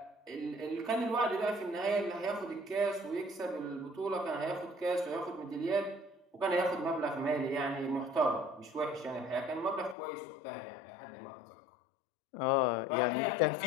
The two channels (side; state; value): right; drops out; at 10.0 s